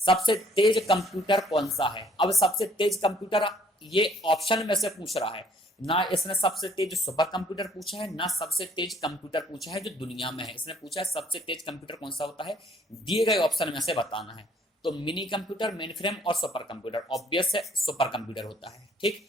तेज कंप्यूटर कौन सा है? अब सबसे तेज कंप्यूटर ये ऑप्शन में से पूछ रहा है ना, इसने सबसे तेज सुपर कंप्यूटर पूछा है ना सबसे तेज कंप्यूटर पूछा है जो दुनिया में है। इसने पूछा है सबसे तेज कंप्यूटर कौन सा होता है, दिए गए ऑप्शन में से बताना है। तो मिनी कंप्यूटर, मेन फ्रेम और सुपर कंप्यूटर, ऑब्वियस है सुपर कंप्यूटर होता है। ठीक,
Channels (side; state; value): both; normal; correlation 0.60